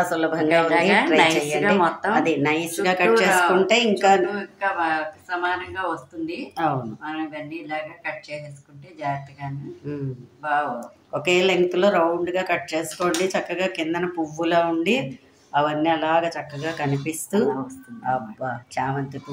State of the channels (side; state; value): both; identical; correlation 1.00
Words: సులభంగా ఉంది, ట్రై చేయండి. అది నైస్గా కట్ చేసుకుంటే ఇంకా సమానంగా వస్తుంది. అవును, మనం ఇవన్నీ ఇలాగా కట్ చేసేసుకుంటే జాగ్రత్తగానే బాగా ఒకే లెంగ్త్లో రౌండ్గా కట్ చేసుకోండి. చక్కగా కిందన పువ్వులా ఉండి అవన్నీ అలాగ చక్కగా కనిపిస్తూ వస్తుంది. అబ్బా, చామంతి